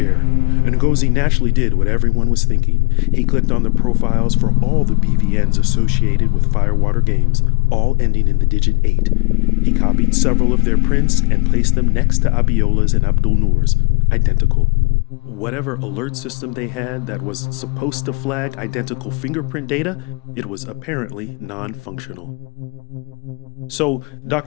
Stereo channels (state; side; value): quieter; right; 28.5 dB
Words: and Ngozi naturally did what everyone was thinking. He clicked on the profiles for all the BVNs associated with Firewater Games, all ending in the digit 8. He copied several of their prints and placed them next to Abiola's and Abdul Noor's, identical. Whatever alert system they had that was supposed to flag identical fingerprint data, it was apparently non-functional. So,